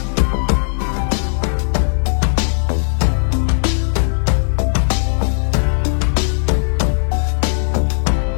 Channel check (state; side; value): silent; right; 66 dB below the other